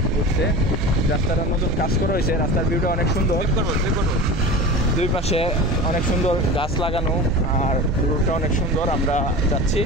ঘুরছে। রাস্তাটা নতুন কাজ করা হয়েছে, রাস্তার ভিউটা অনেক সুন্দর, দুই পাশে অনেক সুন্দর গাছ লাগানো আর রোডটা অনেক সুন্দর। আমরা যাচ্ছি,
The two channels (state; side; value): normal; both; correlation 0.32